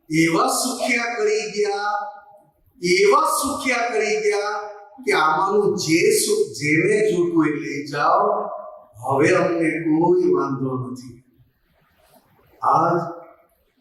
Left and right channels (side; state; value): both; identical; correlation 1.00